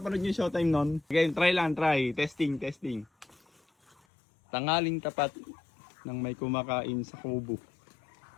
yung Showtime nun? Okay, try. Testing. Tangaling tapat ng may kumakain sa kubo.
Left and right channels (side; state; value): right; drops out; at 4.0 s